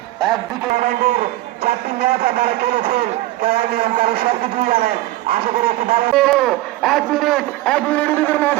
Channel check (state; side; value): quieter; left; 16.8 dB